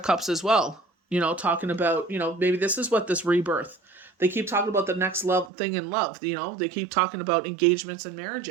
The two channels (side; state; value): left; drops out; at 5.5 s